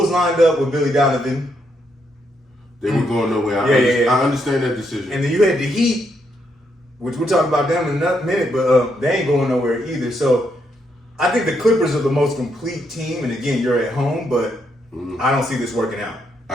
lined up with Billy Donovan. They were going nowhere. I understand that decision. And then you had the Heat, which we'll talk about them in a minute, but they ain't going nowhere either. So I think the Clippers are the most complete team. And again, you're at home, but I don't see this working out.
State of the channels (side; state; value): both; normal; correlation 0.77